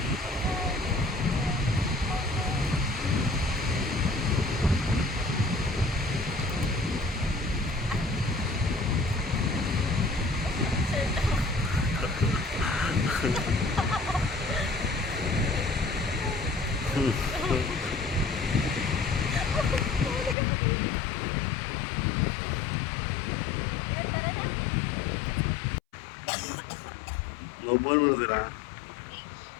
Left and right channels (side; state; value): right; drops out; at 20.4 s